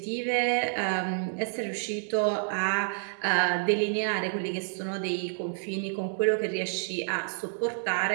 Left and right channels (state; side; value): silent; left; digital silence